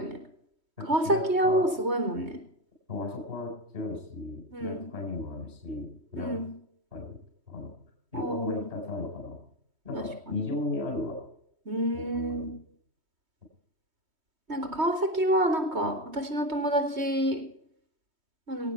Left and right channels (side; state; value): left; late; 3.2 ms